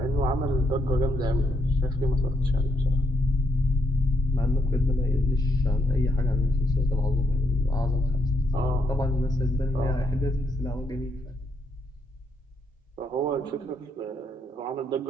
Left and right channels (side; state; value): both; normal; correlation 0.76